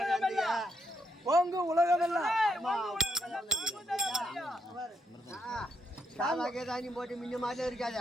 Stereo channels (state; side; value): normal; both; correlation 0.77